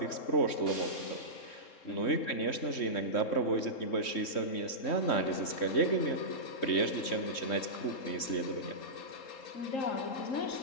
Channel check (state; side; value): late; right; 3.7 ms